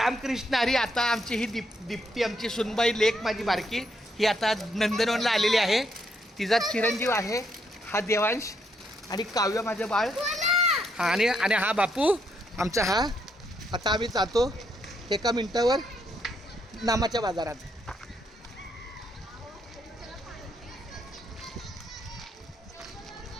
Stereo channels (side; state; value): both; normal; correlation 0.75